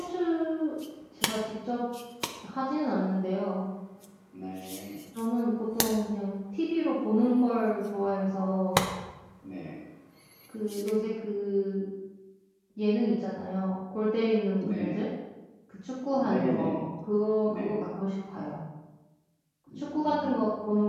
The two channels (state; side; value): identical; both; correlation 1.00